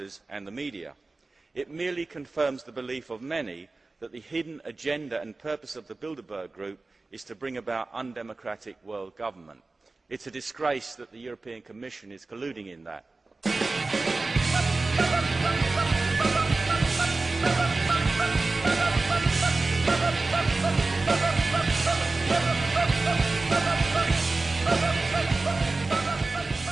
and the media. It merely confirms the belief of many that the hidden agenda and purpose of the Bilderberg Group is to bring about undemocratic world government. It's a disgrace that the European Commission is colluding in that.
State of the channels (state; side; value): quieter; left; 3.5 dB